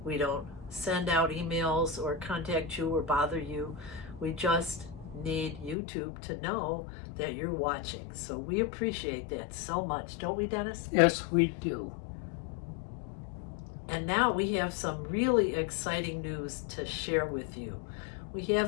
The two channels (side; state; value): right; drops out; at 5.8 s